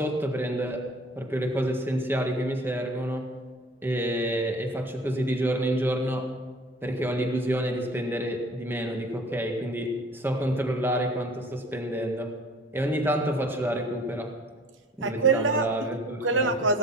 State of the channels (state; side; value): normal; both; correlation 0.49